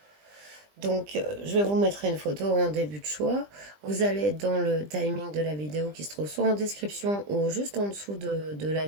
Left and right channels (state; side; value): late; left; 20 ms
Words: Donc, je vais vous mettre une photo en début de choix. Vous allez dans le timing de la vidéo qui se trouve soit en description ou juste en dessous de la